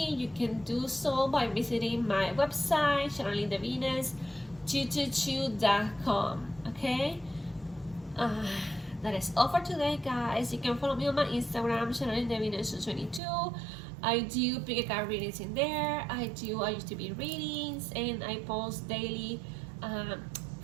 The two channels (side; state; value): left; drops out; at 13.2 s